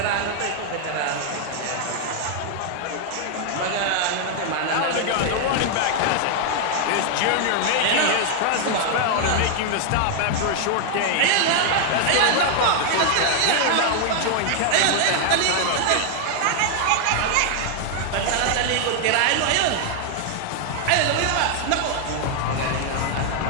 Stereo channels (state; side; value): different; both; correlation 0.00